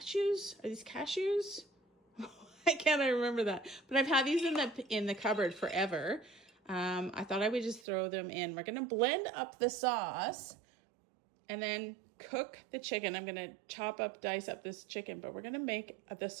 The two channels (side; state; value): left; drops out; at 7.9 s